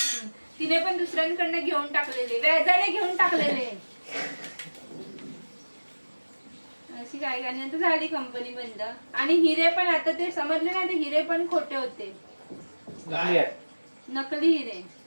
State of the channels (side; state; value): both; inverted; correlation -1.00